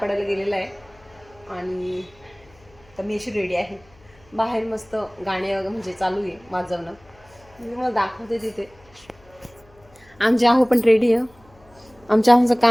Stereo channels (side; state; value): left; noise; hum, 28 dB below the sound